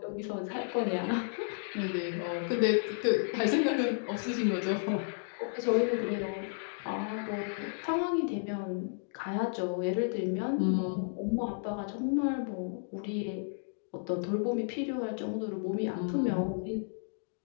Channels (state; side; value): silent; right; digital silence